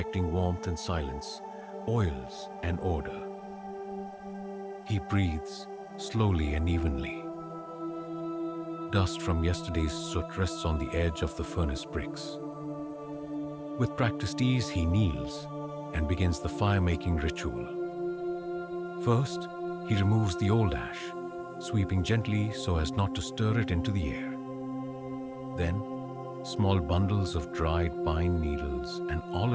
warmth and silence, oils and order. He breathes slowly and evenly. Dust from yesterday's soot rests on the edge of the furnace bricks. With practiced ease, he kneels and begins the fire-making ritual. First, he removes the old ash, sweeping gently so as not to stir it into the air. Then, small bundles of dried pine needles and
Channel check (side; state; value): both; identical; correlation 1.00